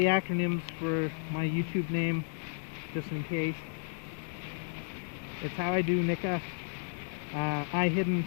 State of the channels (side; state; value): right; silent; digital silence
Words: acronyms for my YouTube name, just in case. It's how I do Nika. iHidden